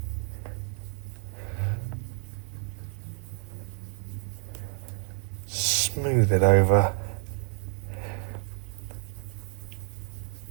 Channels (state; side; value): quieter; left; 38.1 dB